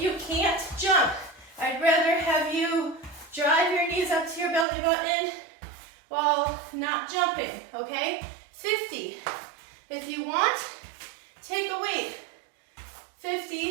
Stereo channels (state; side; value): drops out; left; at 4.7 s